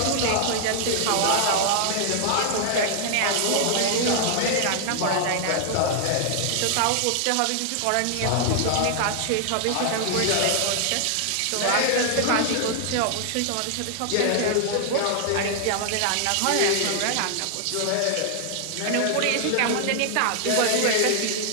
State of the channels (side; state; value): both; different; correlation 0.00